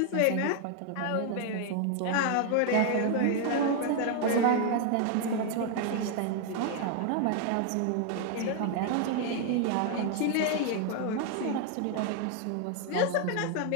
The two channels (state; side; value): different; both; correlation 0.00